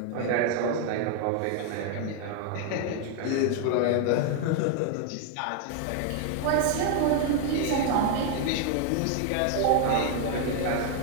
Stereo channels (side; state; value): both; different; correlation 0.00